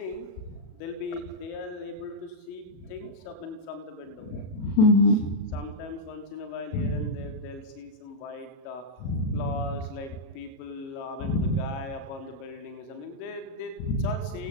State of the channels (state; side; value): late; right; 37 ms